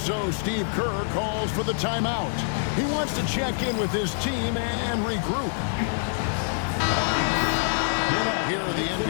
Steve Kerr calls for the timeout. He wants to check in with his team and regroup. Here are the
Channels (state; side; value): silent; right; digital silence